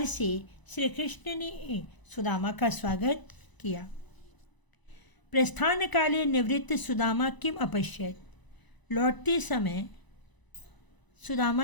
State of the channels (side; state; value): right; late; 1.0 ms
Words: से श्री कृष्ण ने सुदामा का स्वागत किया। प्रस्थान काले निवृत्त सुदामा किम अपश्यत। लौटते समय